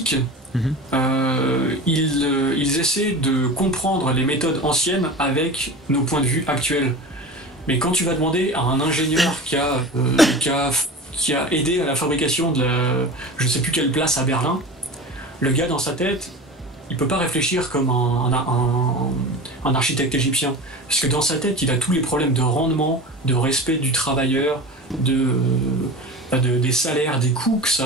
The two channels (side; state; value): both; normal; correlation 0.32